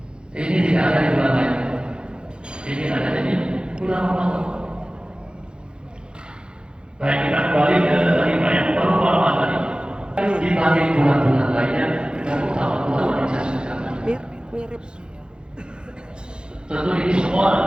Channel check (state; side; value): late; left; 0.050 ms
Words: Ini tidak ada di bulan lain. Ini ada di bulan Ramadan. Baik, kita kembali ke lima yang pertama tadi. Dibanding bulan-bulan lainnya, dengan utama bulan yang saya sebutkan. Mirip. Tentu ini semua.